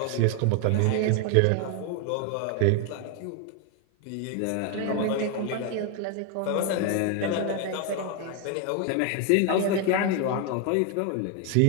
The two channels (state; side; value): different; both; correlation 0.01